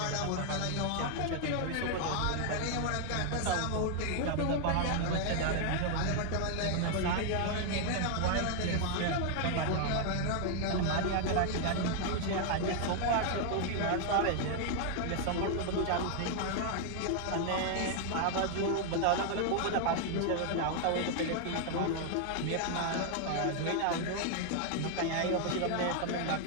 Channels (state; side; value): different; both; correlation 0.00